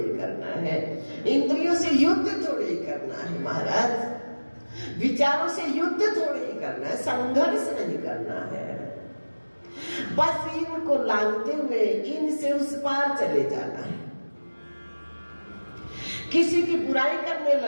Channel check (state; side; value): inverted; both; correlation -1.00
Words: करना है, इंद्रियों से युद्ध थोड़े ही करना है महाराज, विचारों से युद्ध थोड़े ही करना है, संघर्ष नहीं करना है। बस इनको लांघते हुए इनसे उस पार चले जाना है। किसी की बुराई करने